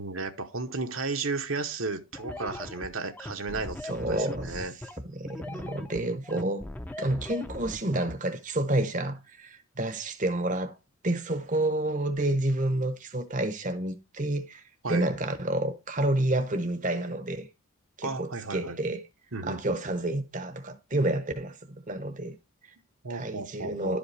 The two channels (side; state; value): both; normal; correlation 0.45